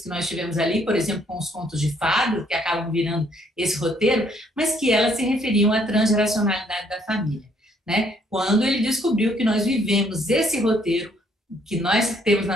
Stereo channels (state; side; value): normal; both; correlation 0.67